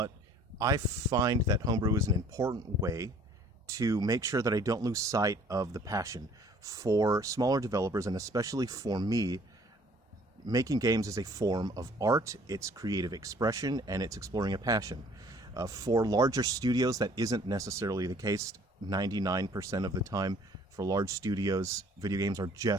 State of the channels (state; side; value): normal; both; correlation 0.55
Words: I find that homebrew is an important way to make sure that I don't lose sight of the passion for smaller developers, and especially for me. Making games is a form of art, it's creative expression, and it's exploring a passion. For larger studios, that isn't necessarily the case 99% of the time. For large studios, video games are